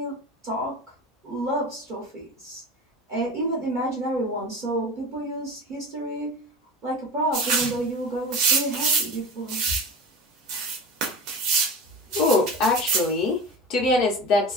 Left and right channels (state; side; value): normal; both; correlation 0.31